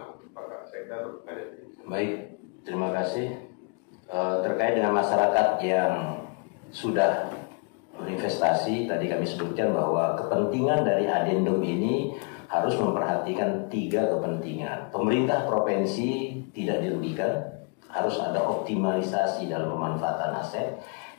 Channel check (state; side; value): quieter; right; 36.5 dB